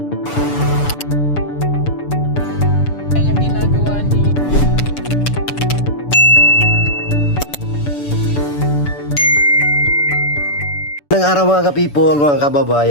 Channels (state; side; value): late; right; 6.9 ms